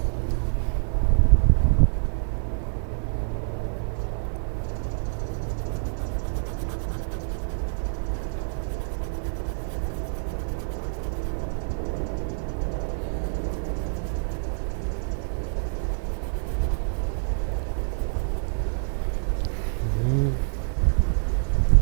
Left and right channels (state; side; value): silent; left; 61 dB below the other